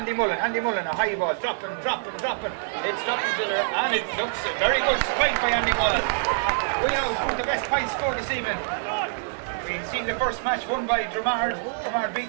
Mullen, a high ball, dropping. It's dropping to it, and it looks a very good spike by Andy Mullen. We know who's the best point scorer this evening. You've seen the first match won by Dramard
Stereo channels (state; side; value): silent; left; 61 dB below the other